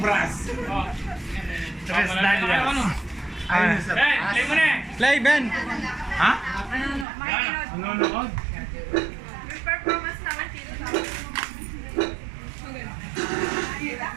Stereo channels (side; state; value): left; drops out; at 7.1 s